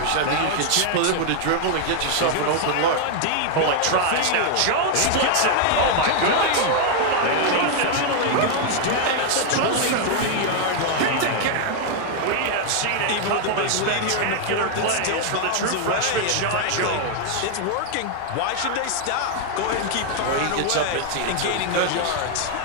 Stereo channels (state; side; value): different; both; correlation 0.00